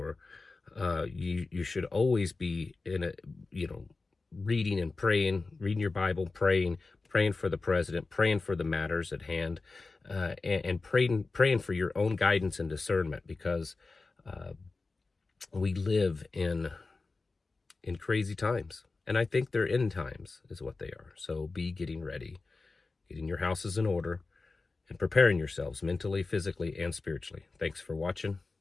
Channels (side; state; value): right; quieter; 3.8 dB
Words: You should always be reading and praying, reading your Bible, praying for the president, praying for the matters at hand, and praying for your own guidance and discernment, because we live in crazy times, and I think they're end times is what they are. So be getting ready, getting your houses in order, and preparing yourselves mentally, physically, and spiritually. Thanks for watching.